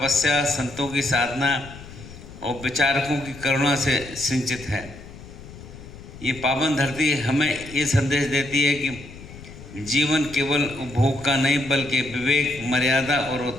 संतों की साधना और विचारकों की करुणा से सिंचित है। ये पावन धरती हमें ये संदेश देती है कि जीवन केवल उपभोग का नहीं बल्कि विवेक, मर्यादा और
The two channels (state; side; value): noise; left; rumble, 16 dB below the sound